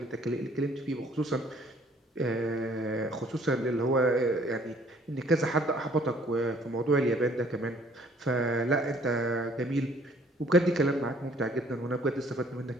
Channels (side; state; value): both; normal; correlation 0.59